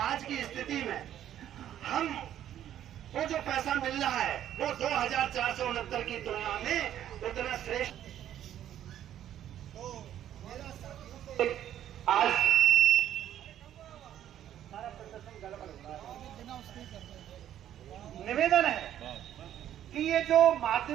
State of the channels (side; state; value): left; quieter; 11.2 dB